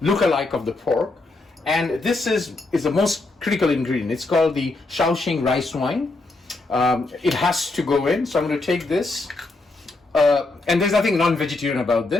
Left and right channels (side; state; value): right; quieter; 3.2 dB